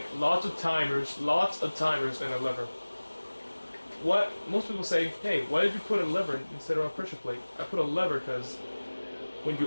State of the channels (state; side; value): inverted; both; correlation -1.00